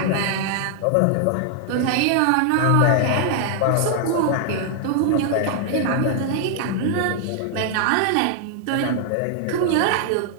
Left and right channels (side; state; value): both; different; correlation 0.00